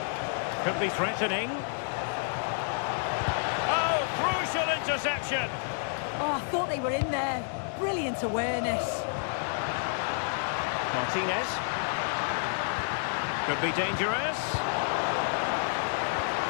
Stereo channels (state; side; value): silent; right; digital silence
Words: Could be threatening. Oh, crucial interception. Oh, I thought they were in there. Brilliant awareness. Martinez. Could be dangerous.